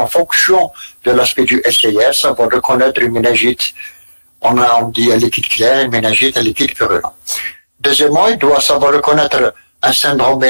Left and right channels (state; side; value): inverted; both; correlation -1.00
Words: fonction de l'aspect du SIR, savoir reconnaître une méningite, on dit un liquide clair, une méningite, un liquide purulent. Deuxièmement, il doit savoir reconnaître un syndrome